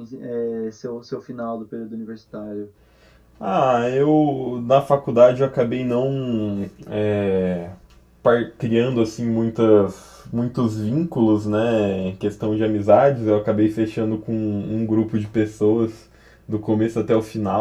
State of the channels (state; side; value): identical; both; correlation 1.00